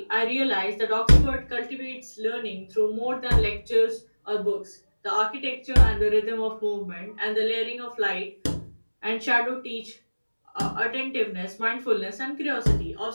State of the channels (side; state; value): both; inverted; correlation -1.00